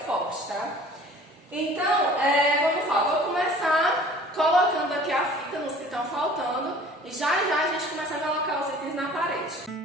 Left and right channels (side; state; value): both; normal; correlation 0.48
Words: tá? Então, vamos lá, vou começar colocando aqui a fita nos que estão faltando e já a gente começa a colocar os itens na parede.